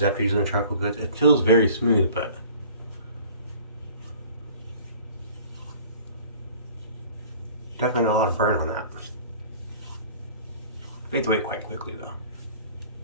after using the charcoal goods. It feels very smooth, but definitely got a lot of burn on that. Fades away quite quickly though.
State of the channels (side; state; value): both; inverted; correlation -0.48